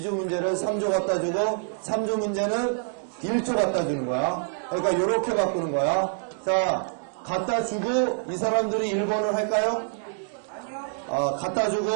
문제를 3조 갖다 주고 3조 문제는 1조 갖다 주는 거야. 그러니까 이렇게 바꾸는 거야. 자, 갖다 주고 이 사람들이 1번을 할까요? 갖다 주고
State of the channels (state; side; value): silent; left; digital silence